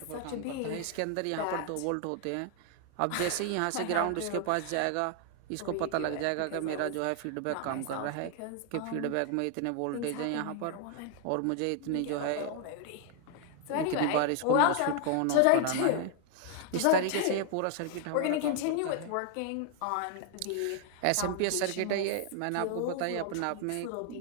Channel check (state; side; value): different; both; correlation 0.00